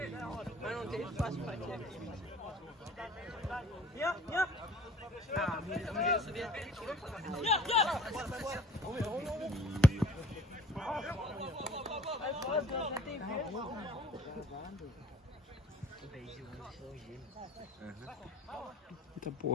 Mas não tem espaço pra ti. Ah, eu subi até aqui. Eita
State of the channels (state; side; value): normal; both; correlation 0.50